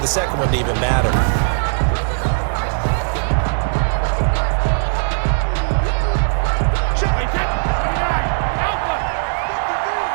2nd one to even matter.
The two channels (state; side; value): silent; left; digital silence